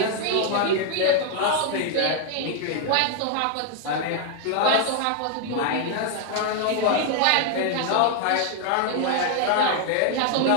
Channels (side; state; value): both; different; correlation 0.00